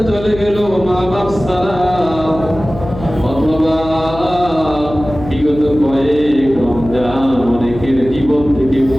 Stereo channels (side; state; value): left; noise; hum, 12 dB below the sound